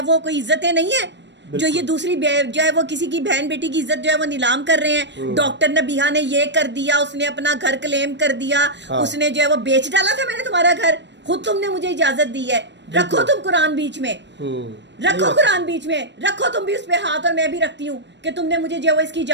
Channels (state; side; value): late; left; 0.52 ms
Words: वो कोई इज्जतें नहीं है, जो ये दूसरी जो है वो किसी की बहन बेटी की इज्जत जो है वो नीलाम कर रहे हैं। डॉक्टर नबीहा ने ये कर दिया, उसने अपना घर क्लेम कर दिया। हाँ। उसने जो है वो बेच डाला था मैंने तुम्हारा घर, खुद तुमने मुझे इजाजत दी है। रखो तुम कुरान बीच में, रखो कुरान बीच में, रखो तुम भी उस पे हाथ, और मैं भी रखती हूँ कि तुमने मुझे जो है इसकी